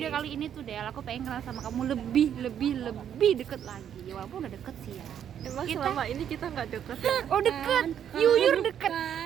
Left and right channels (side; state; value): left; quieter; 9.3 dB